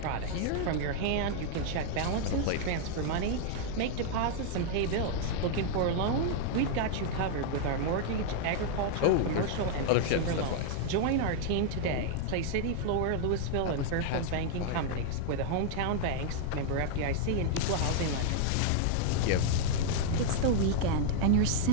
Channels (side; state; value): both; different; correlation 0.00